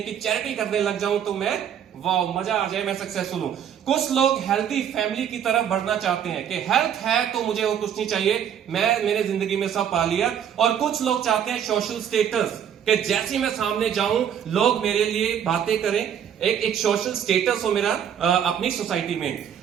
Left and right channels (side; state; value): left; quieter; 9.0 dB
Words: चैरिटी करने लग जाऊं तो मैं, वाह, मजा आ जाए, मैं सक्सेसफुल हूं। कुछ लोग हेल्थी फैमिली की तरफ बढ़ना चाहते हैं कि हेल्थ है तो मुझे और कुछ नहीं चाहिए, मैं मेरे जिंदगी में सब पा लिया। और कुछ लोग चाहते हैं सोशल स्टेटस, कि जैसे मैं सामने जाऊं लोग मेरे लिए बातें करें, एक सोशल स्टेटस हो मेरा अपनी सोसाइटी में।